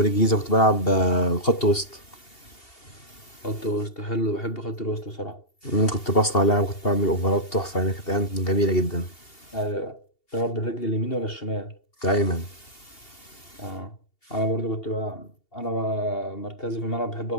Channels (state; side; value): late; right; 2.7 ms